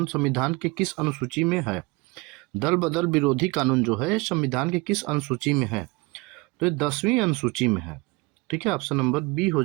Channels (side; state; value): left; quieter; 25.1 dB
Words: संविधान के किस अनुसूची में है? दल बदल विरोधी कानून जो है संविधान के किस अनुसूची में है? तो ये 10वीं अनुसूची में है। ठीक है, ऑप्शन नंबर बी हो